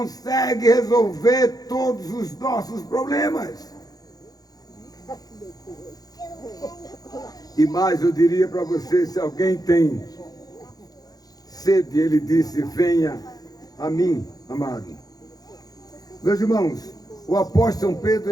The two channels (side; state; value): right; late; 0.18 ms